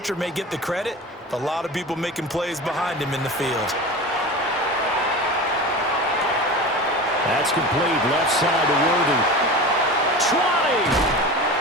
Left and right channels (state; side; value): normal; both; correlation 0.31